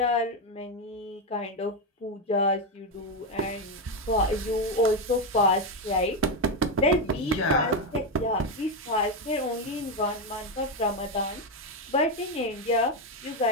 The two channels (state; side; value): normal; both; correlation 0.08